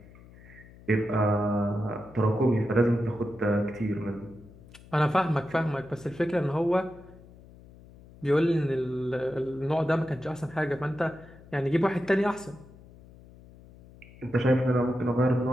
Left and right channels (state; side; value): noise; left; hum, 22 dB below the sound